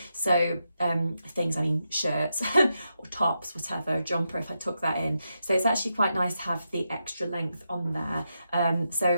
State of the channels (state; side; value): inverted; both; correlation -0.86